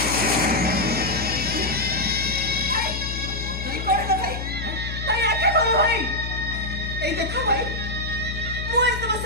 এই দেখো ভাই ମୁଁ ଏ ତମ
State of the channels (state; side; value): noise; left; hum, 6 dB below the sound